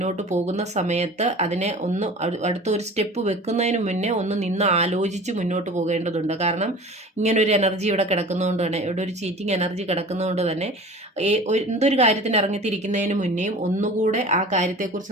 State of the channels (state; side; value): normal; both; correlation 0.39